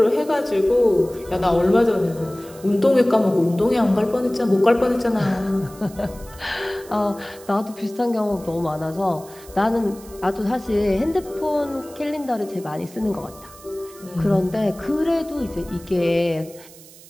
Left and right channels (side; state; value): right; noise; hiss, 21 dB below the sound